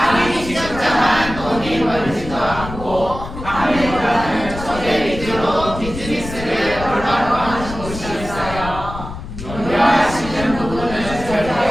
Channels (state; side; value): noise; left; rumble, 10 dB below the sound